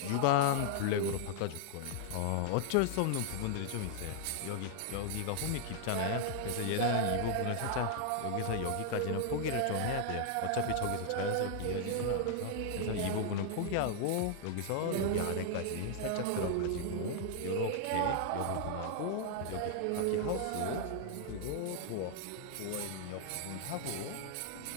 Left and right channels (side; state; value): both; different; correlation -0.01